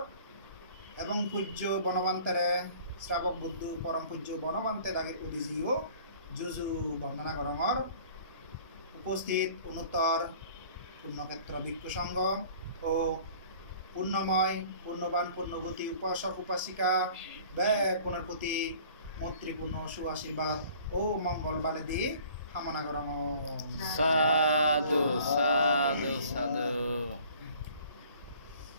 এবং পূজ্য বনবান্তেরে শ্রাবক বুদ্ধ পরম পূজ্য বনবান্তে দাগের উদিজিও যুজু বন্দনা করঙর উপস্থিত উন্নতর পূর্ণক্ষেত্র ভিক্ষু সংঘ ও পূর্ণময় পূর্ণবান পূর্ণবতী উপাসক উপাসিকা ব্যয় প্রতি মৈত্রীপূর্ণ সুআশীর্বাদ ও মঙ্গল বালে দিয়ে কামনা করম। সাধু সাধু সাধু।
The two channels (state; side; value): inverted; both; correlation -0.51